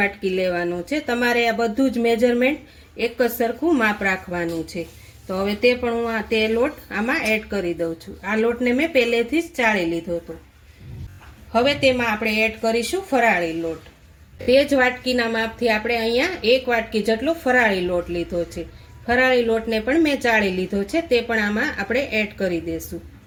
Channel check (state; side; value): identical; both; correlation 1.00